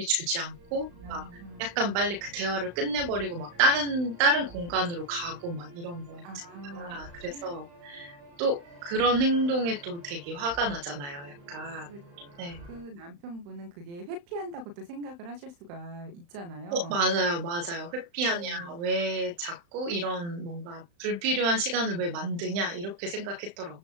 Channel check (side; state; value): left; late; 35 ms